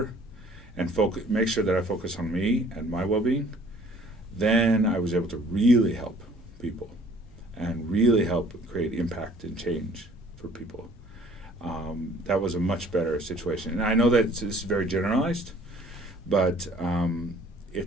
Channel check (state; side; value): normal; both; correlation 0.55